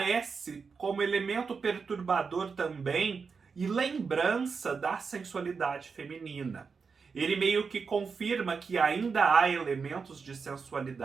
como elemento perturbador também e lembrança da sensualidade feminina. Ele meio que confirma que ainda há elementos de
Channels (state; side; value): quieter; left; 5.3 dB